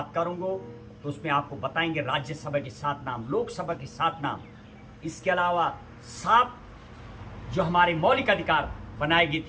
करूंगा तो उसमें आपको बताएंगे राज्यसभा के 7 नाम, लोकसभा के 7 नाम, इसके अलावा 7 जो हमारे मौलिक अधिकार बनाए गए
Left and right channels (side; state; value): both; identical; correlation 1.00